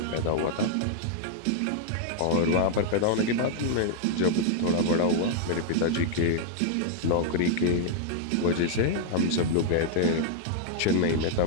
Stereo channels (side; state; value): both; different; correlation 0.00